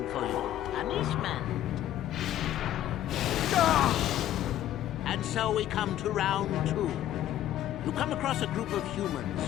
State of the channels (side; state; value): right; quieter; 12.5 dB